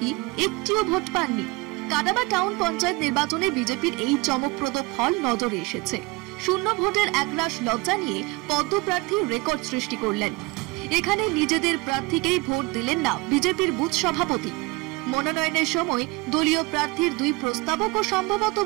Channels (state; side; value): quieter; left; 24.1 dB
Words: একটিও ভোট পাননি। কাডাবা টাউন পঞ্চায়েত নির্বাচনে বিজেপির এই চমকপ্রদ ফল নজরে এসেছে। শূন্য ভোটের একরাশ লজ্জা নিয়ে পদ্ম প্রার্থী রেকর্ড সৃষ্টি করলেন। এখানে নিজেদের প্রার্থীকেই ভোট দিলেন না বিজেপির বুথ সভাপতি। মনোনয়নের সময় দলীয় প্রার্থীর দুই প্রস্তাবকও সম্ভবত